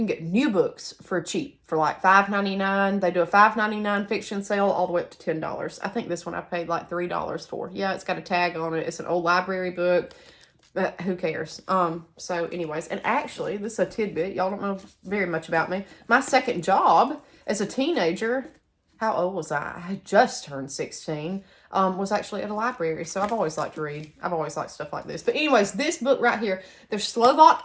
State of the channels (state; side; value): identical; both; correlation 1.00